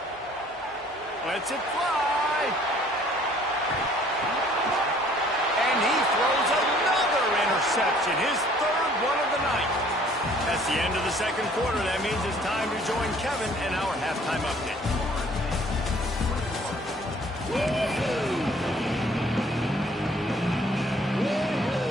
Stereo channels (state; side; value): normal; both; correlation 0.57